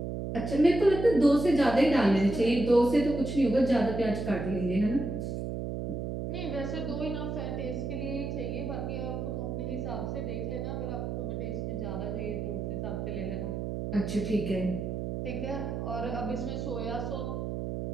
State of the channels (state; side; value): noise; right; hum, 4 dB below the sound